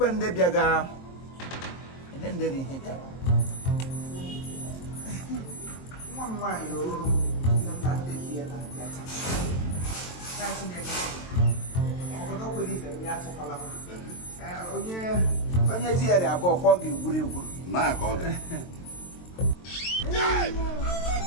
when they biaga. And then they hit it. One wine, you sometimes they hear that. That's in the don't believe them yet to follow. Oh, yeah. When you hear about walking, would you? My God.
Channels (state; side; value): late; right; 23 ms